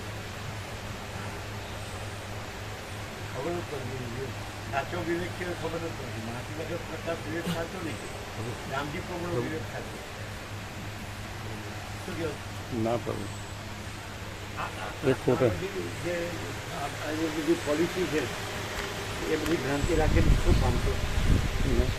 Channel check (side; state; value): both; identical; correlation 1.00